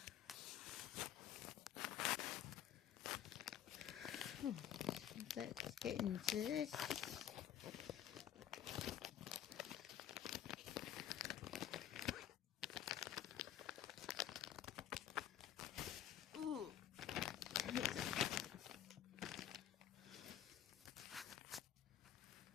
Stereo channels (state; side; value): quieter; right; 10.7 dB